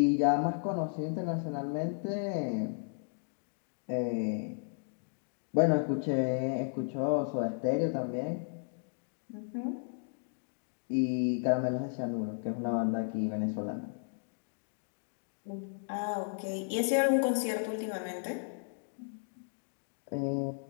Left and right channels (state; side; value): silent; right; digital silence